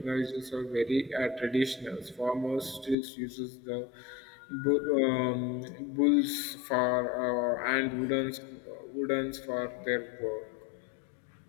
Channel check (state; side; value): drops out; right; at 3.0 s